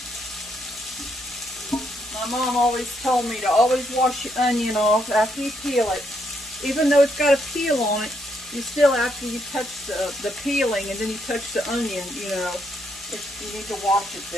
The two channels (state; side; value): noise; right; hum, 28 dB below the sound